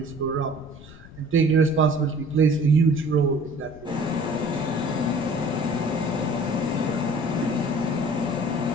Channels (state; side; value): noise; left; rumble, 19 dB below the sound